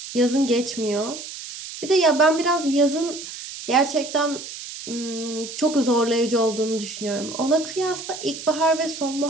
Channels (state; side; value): noise; right; hiss, 11 dB below the sound